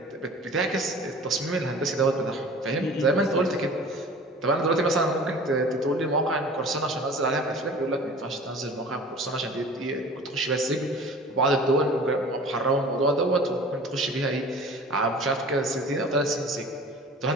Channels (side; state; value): both; normal; correlation 0.43